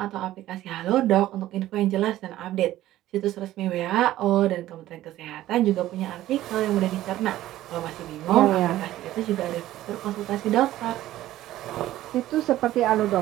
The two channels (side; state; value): left; quieter; 14.5 dB